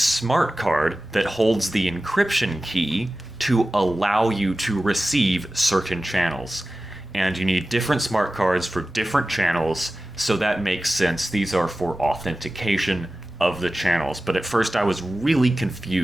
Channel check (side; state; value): both; normal; correlation 0.95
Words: card that holds the encryption key to allow you to receive certain channels. And you need different smart cards for different channels, so that makes sense. These are for authentication of the channels. But at first I was really